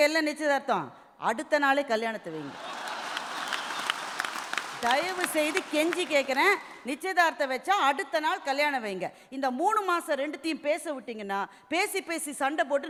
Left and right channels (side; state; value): both; identical; correlation 1.00